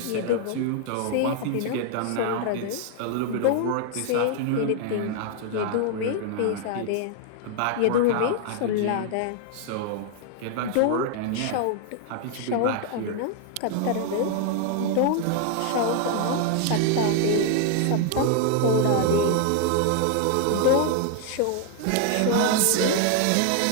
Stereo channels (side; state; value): both; different; correlation 0.00